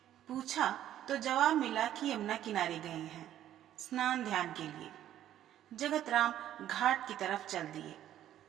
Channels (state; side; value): quieter; left; 11.7 dB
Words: पूछा तो जवाब मिला कि यमुना किनारे गए हैं स्नान ध्यान के लिए। जगत राम घाट की तरफ चल दिए।